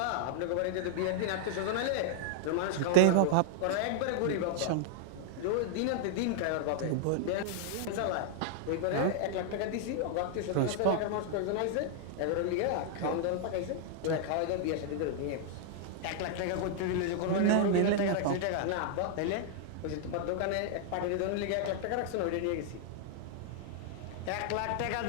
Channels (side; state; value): both; different; correlation -0.01